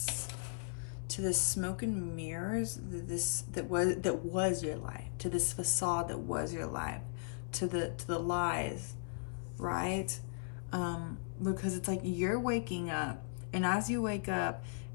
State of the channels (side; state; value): right; silent; 53 dB below the other